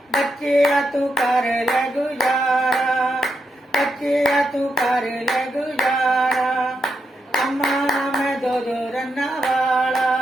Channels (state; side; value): normal; both; correlation 0.83